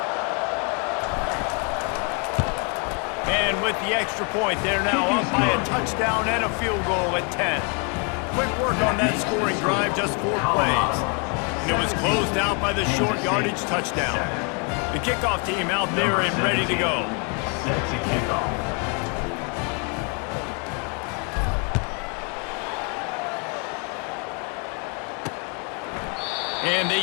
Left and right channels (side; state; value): right; quieter; 36.1 dB